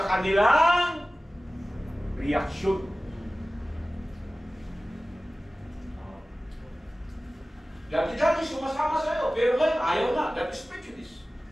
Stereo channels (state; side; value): normal; both; correlation 0.97